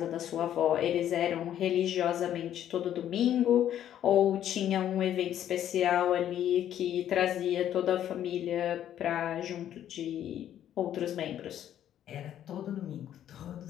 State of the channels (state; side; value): quieter; right; 10.9 dB